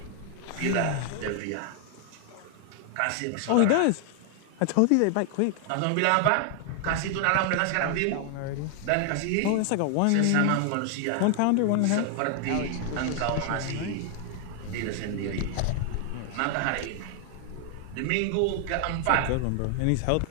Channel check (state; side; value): different; both; correlation 0.00